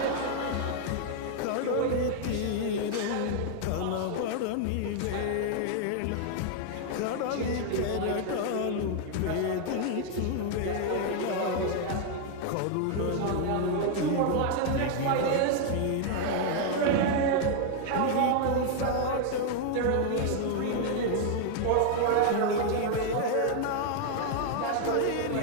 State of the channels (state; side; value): different; both; correlation 0.00